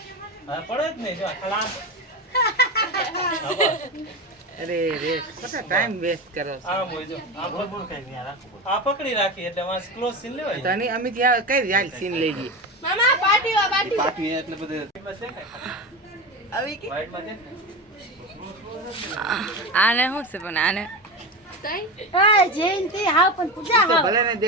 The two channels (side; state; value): both; normal; correlation 0.23